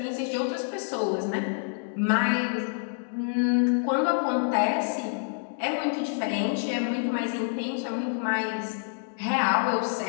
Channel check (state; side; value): silent; right; digital silence